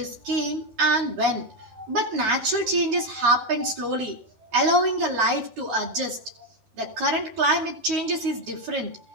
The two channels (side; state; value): left; late; 13 ms